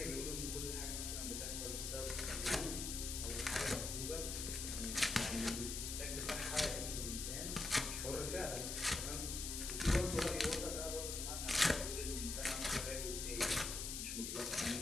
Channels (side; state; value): left; noise; hiss, 3 dB below the sound